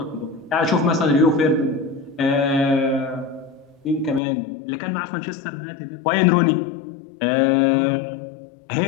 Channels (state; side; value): drops out; right; at 4.2 s